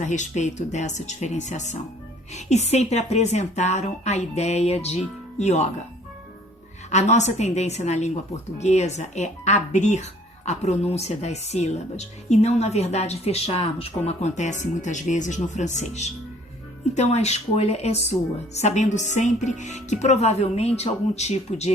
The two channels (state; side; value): normal; both; correlation 0.56